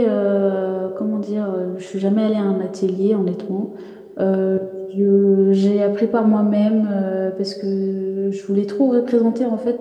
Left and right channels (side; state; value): both; identical; correlation 1.00